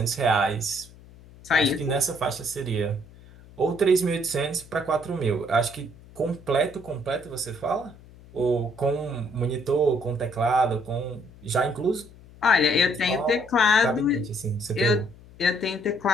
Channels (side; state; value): left; noise; hum, 22 dB below the sound